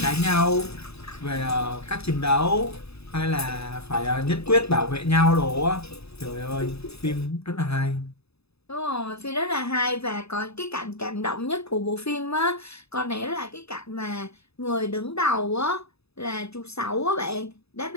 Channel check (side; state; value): right; late; 0.79 ms